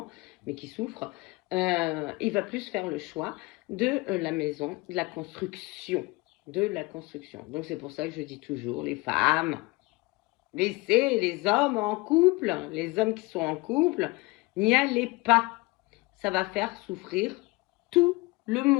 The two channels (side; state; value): right; quieter; 23.9 dB